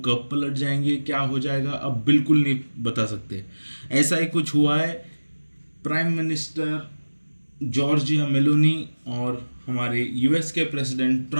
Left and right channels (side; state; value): both; inverted; correlation -1.00